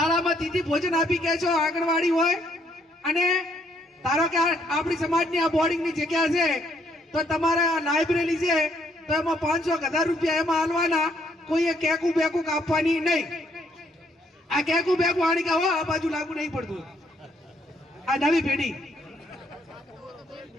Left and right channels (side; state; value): both; normal; correlation 0.69